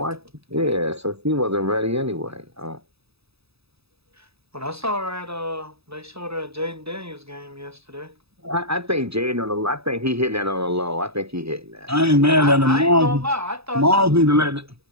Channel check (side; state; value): left; late; 0.78 ms